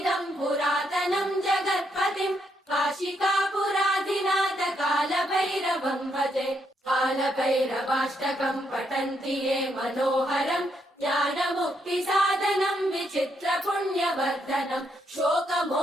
पुरातनं जगत्पतिं काशिकापुराधिनाथ काल भैरवं भजे कालभैरवाष्टकं पठन्ति ये मनोहरम् ज्ञानमुक्तिसाधनं विचित्रपुण्यवर्धनं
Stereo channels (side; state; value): both; normal; correlation 0.76